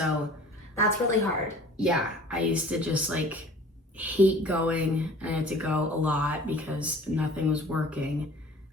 That's really hard. yeah, I used to just like hate going, and I had to go a lot because nothing was working.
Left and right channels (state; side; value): normal; both; correlation 0.47